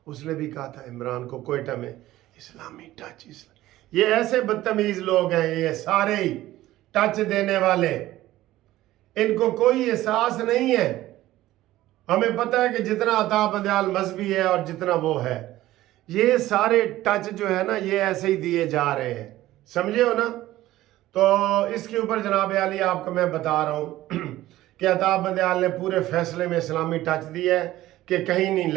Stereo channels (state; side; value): quieter; left; 15.6 dB